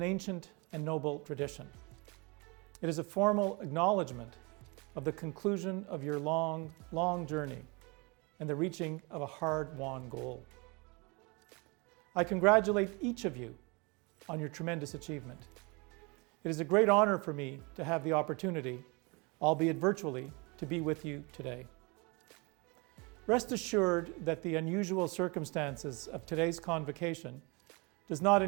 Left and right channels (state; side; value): quieter; left; 28.7 dB